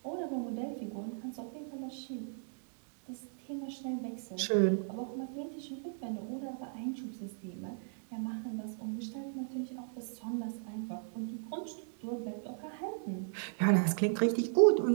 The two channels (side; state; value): left; silent; digital silence